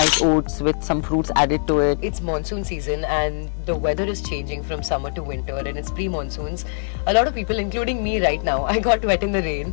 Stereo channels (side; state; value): right; silent; digital silence